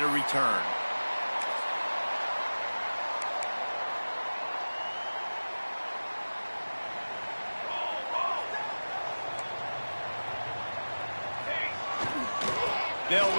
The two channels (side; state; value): both; inverted; correlation -1.00